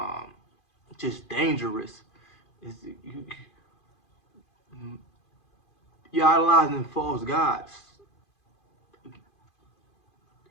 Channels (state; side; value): late; right; 2.5 ms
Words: just dangerous, is you're idolizing false gods,